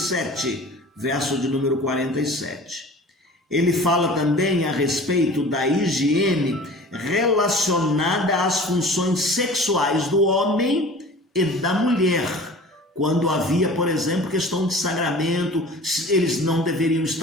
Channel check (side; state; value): both; normal; correlation 0.42